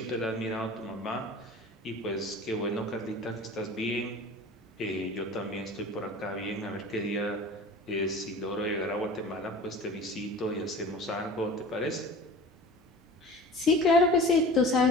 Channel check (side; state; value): both; normal; correlation 0.39